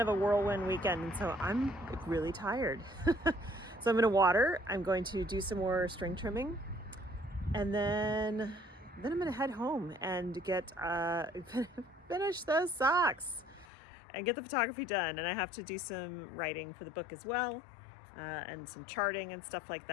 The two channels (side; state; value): right; drops out; at 13.7 s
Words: of a whirlwind weekend. And so I'm really tired. So I'm gonna water, I'm going to do some more string trimming, and then I'm gonna head home and get finish those socks and get the photography done. And I have to do some writing for the book as well, and some charting and stuff like